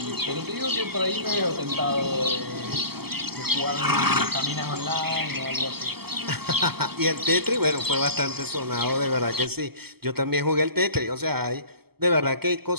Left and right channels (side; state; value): left; late; 0.96 ms